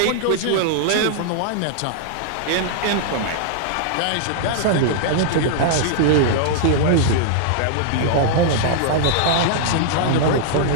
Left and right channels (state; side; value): different; both; correlation -0.01